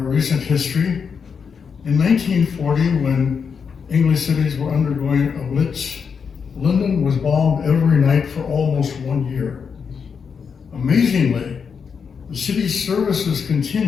history. In 1940, when English cities were undergoing a blitz, London was bombed every night for almost 1 year. Amazingly, the city's services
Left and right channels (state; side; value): quieter; right; 6.2 dB